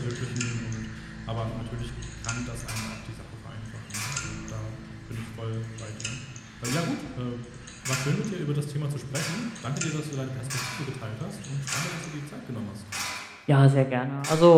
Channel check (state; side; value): identical; both; correlation 1.00